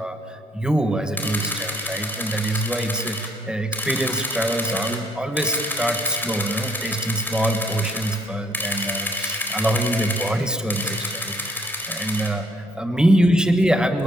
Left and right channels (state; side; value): normal; both; correlation 0.67